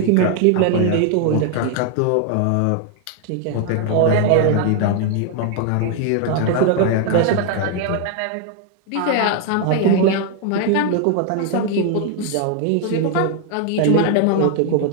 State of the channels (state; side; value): different; both; correlation 0.00